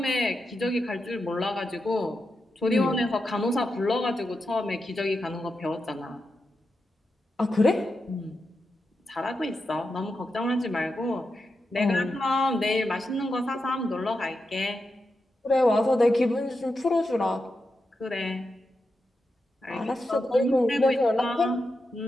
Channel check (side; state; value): both; normal; correlation 0.88